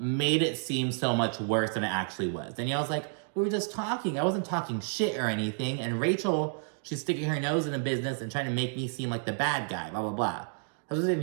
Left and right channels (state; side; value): silent; left; 58 dB below the other